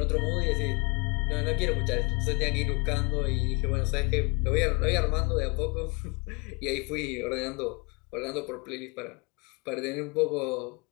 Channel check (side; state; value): right; quieter; 30.4 dB